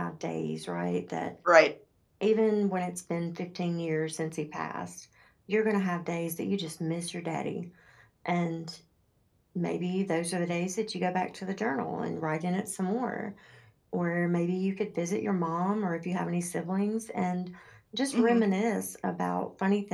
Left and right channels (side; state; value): both; identical; correlation 1.00